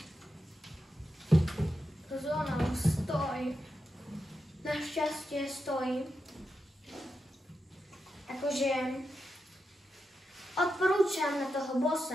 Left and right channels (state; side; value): normal; both; correlation 0.87